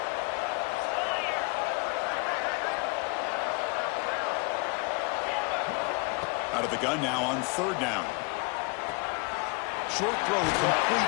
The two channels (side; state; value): right; quieter; 29.9 dB